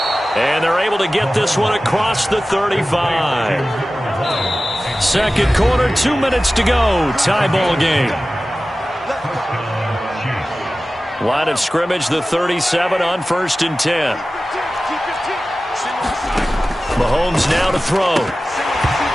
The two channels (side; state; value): both; normal; correlation 0.96